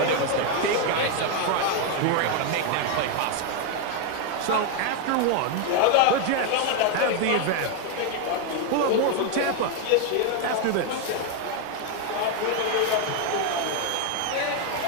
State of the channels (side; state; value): both; different; correlation 0.01